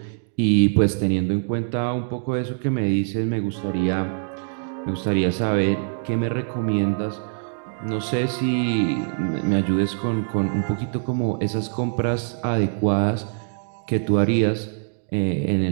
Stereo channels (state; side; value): silent; left; digital silence